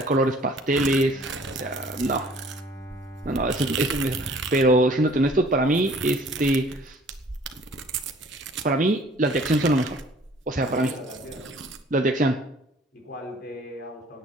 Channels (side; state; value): both; normal; correlation 0.54